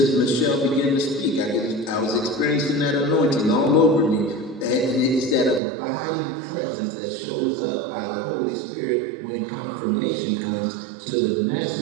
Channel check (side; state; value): left; drops out; at 5.6 s